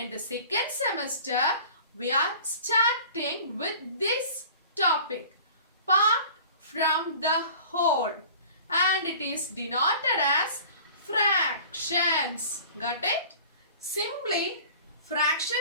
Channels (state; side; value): inverted; both; correlation -0.44